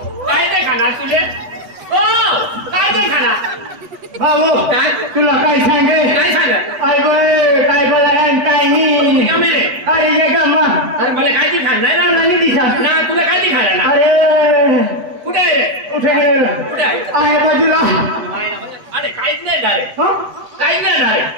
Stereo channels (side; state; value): left; late; 8.1 ms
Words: काय ते खाणार तुले ओ काय ते खाणार भाऊ काय तुला काय सांगे अरे काय बोलायन काय नाही अरे ये गम्मा अरे मला काय ते खाणार नाही दिसा ना तुला काय ते खाणार ना अरे कुठे आहे कुठे आहे बाजूला अरे काहीच नाही डायरेक्ट काहीच नाही